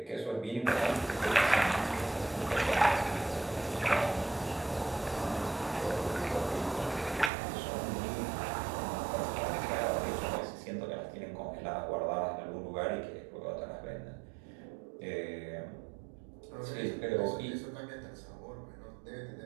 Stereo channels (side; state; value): left; drops out; at 7.3 s